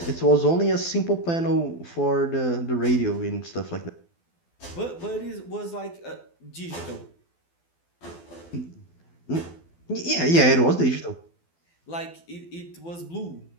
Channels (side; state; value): right; late; 12 ms